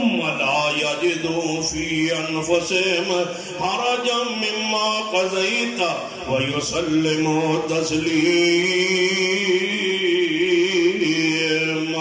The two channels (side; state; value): both; identical; correlation 1.00